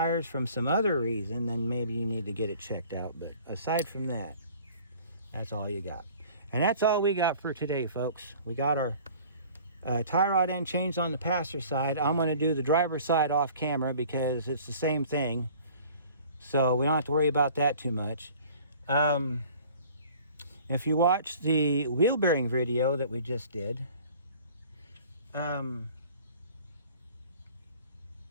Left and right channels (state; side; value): inverted; both; correlation -0.49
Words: from some other reason, then maybe you need to get it checked out. But aside from that, that's all you got. And that's all we got for today, folks. We got our tie rod end changed on the passenger side. I'm going to do the driver's side off camera because it's the same thing. So we don't have to worry about that too much. If you watch the wheel bearing video that we just did,